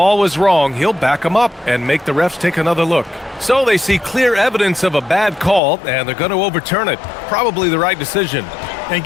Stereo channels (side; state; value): right; drops out; at 5.6 s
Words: was wrong, he'll back them up and make the refs take another look. So they see clear evidence of a bad call, and they're going to overturn it. Probably the right decision. And